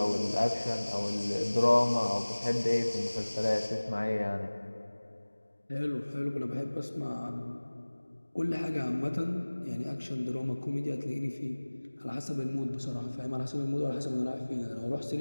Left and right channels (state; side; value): inverted; both; correlation -1.00